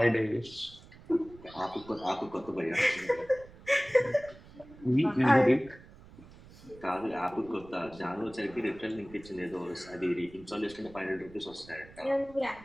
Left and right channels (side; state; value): right; noise; rumble, 21 dB below the sound